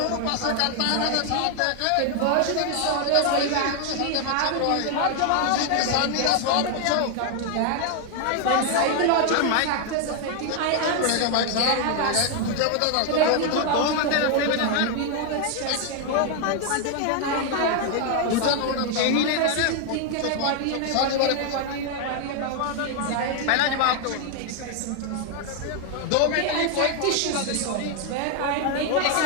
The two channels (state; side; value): different; both; correlation 0.01